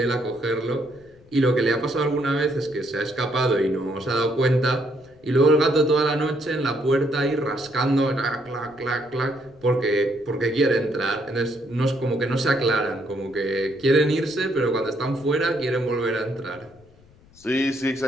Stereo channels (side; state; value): left; noise; rumble, 28 dB below the sound